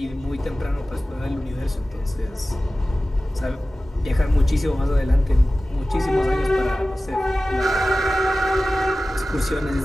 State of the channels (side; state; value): both; normal; correlation 0.96